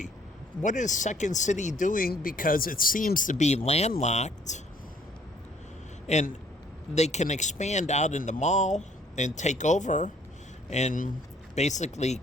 what is Second City doing? Because it seems to be landlocked, and they can expand out in the mall and take over and basically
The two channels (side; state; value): both; normal; correlation 0.61